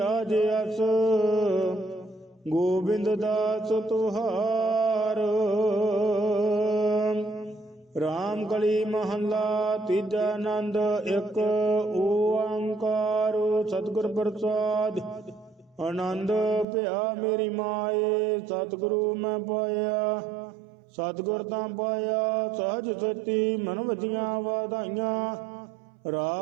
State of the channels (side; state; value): left; drops out; at 16.7 s